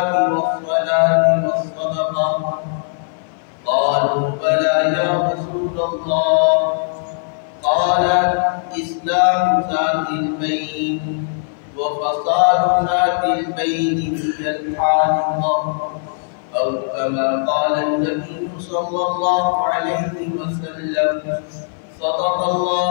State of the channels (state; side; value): silent; right; 57 dB below the other